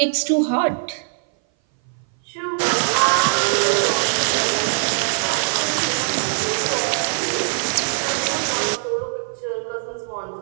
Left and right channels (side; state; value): left; silent; 59 dB below the other